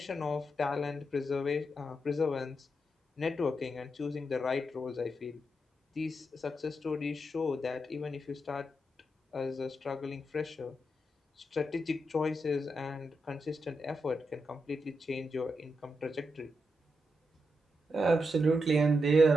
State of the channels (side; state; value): both; normal; correlation 0.84